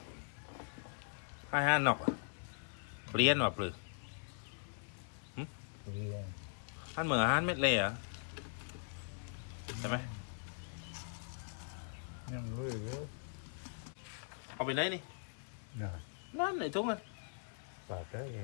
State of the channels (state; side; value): silent; right; digital silence